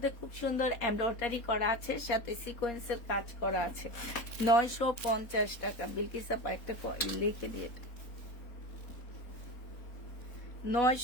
খুব সুন্দর এমব্রয়ডারি করা আছে, সাথে সিকোয়েন্সের কাজ করা আছে। 950 টাকা। বিলকিস আপা একটা লিখে দিয়ে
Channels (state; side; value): late; right; 4.1 ms